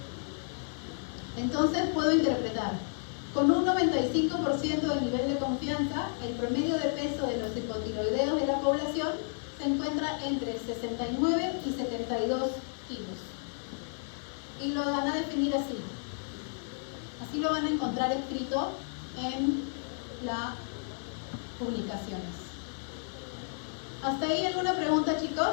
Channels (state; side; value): silent; right; digital silence